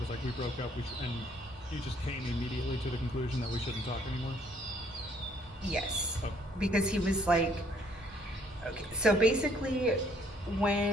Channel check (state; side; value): normal; both; correlation 0.63